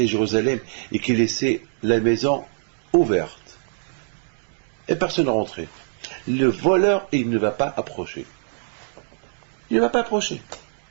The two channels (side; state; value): left; silent; digital silence